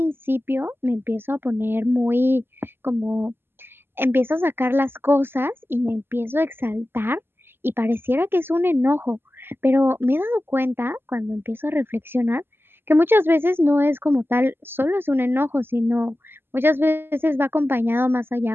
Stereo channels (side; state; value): left; late; 0.11 ms